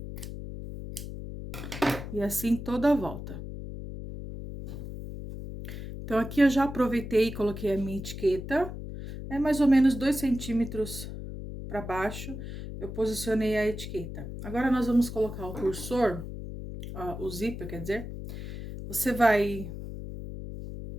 E assim toda a volta. Então, aqui eu já aproveitei e coloquei a minha etiqueta. É mais ou menos 2 centímetros para baixo, eu posicionei a etiqueta. Agora, nós vamos colocar o cursor, ó, o zíper, quer dizer. Você vai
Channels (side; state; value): left; noise; hum, 8 dB below the sound